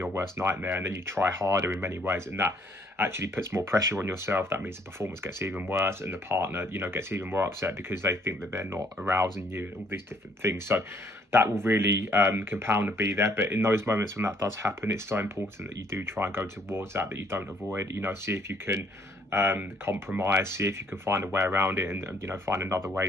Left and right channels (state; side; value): normal; both; correlation 0.65